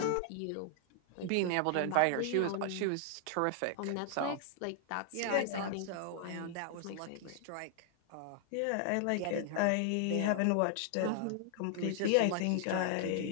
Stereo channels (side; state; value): both; different; correlation 0.00